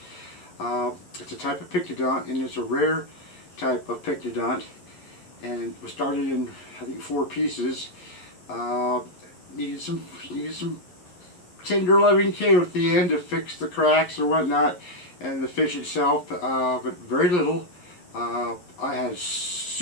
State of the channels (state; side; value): late; right; 11 ms